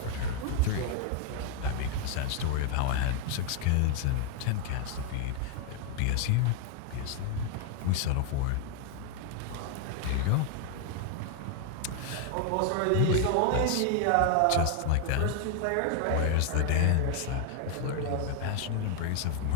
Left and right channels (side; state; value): both; different; correlation 0.00